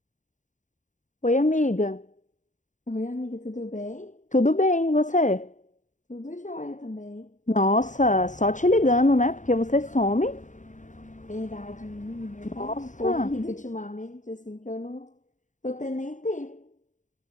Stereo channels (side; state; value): right; late; 0.36 ms